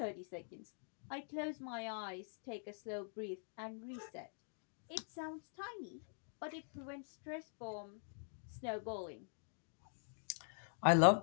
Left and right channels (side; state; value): right; silent; digital silence